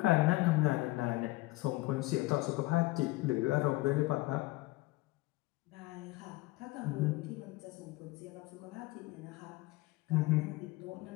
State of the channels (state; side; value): quieter; right; 20.6 dB